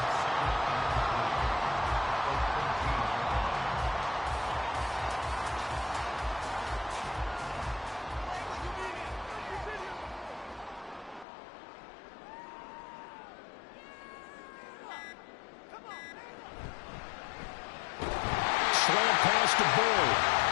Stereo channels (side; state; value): right; drops out; at 11.2 s